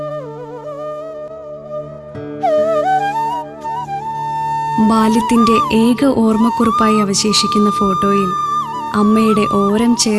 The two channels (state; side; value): identical; both; correlation 1.00